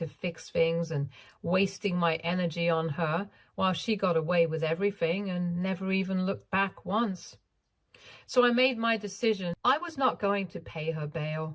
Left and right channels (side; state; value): both; identical; correlation 1.00